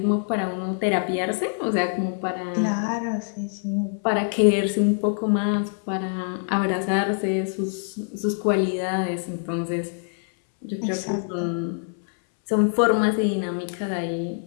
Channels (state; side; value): silent; right; 62 dB below the other